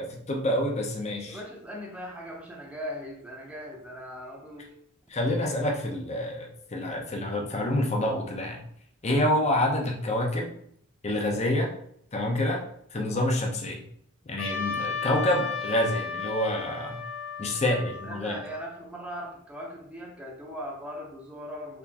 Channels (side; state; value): both; normal; correlation 0.37